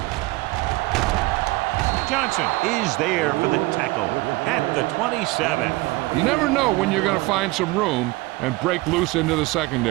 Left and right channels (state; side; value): quieter; left; 21.2 dB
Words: Johnson is there for the tackle at the 27. You never know when you're going to find some room and break loose into the